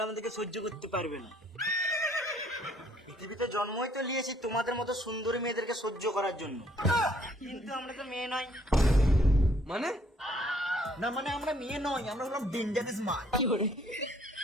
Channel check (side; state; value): both; normal; correlation 0.63